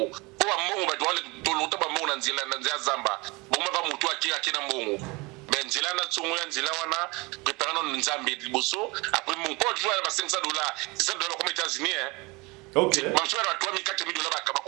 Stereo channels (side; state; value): left; quieter; 25.4 dB